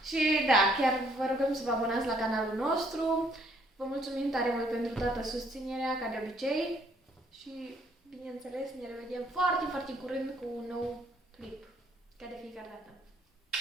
Și da, chiar vă rugăm să vă abonați la canalul nostru. Vă mulțumim tare mult pentru toată susținerea, ca de obicei. Și, bineînțeles, ne revedem foarte, foarte curând cu un nou clip. Ca de fiecare dată.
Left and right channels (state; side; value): normal; both; correlation 0.65